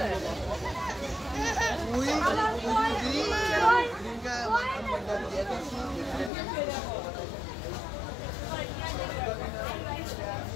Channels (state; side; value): drops out; right; at 6.3 s